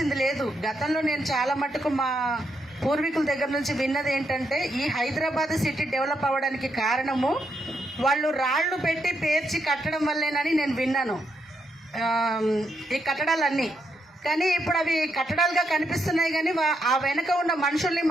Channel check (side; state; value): both; normal; correlation 0.80